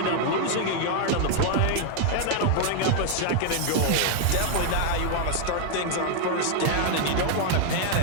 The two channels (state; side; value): different; both; correlation 0.00